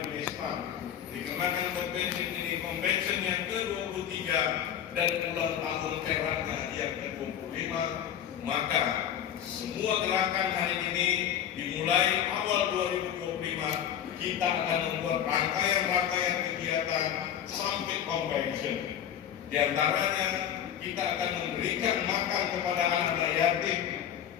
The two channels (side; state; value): right; quieter; 9.8 dB